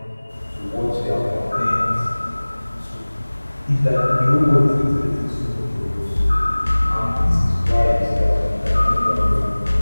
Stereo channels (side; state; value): both; inverted; correlation -1.00